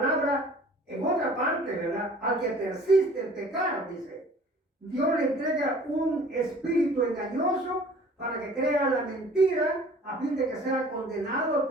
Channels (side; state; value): both; normal; correlation 0.49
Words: en otra parte, ¿verdad? Al que persiste en pecar, dice, Dios le entrega un espíritu engañoso para que crea la mentira, a fin de que sea condenado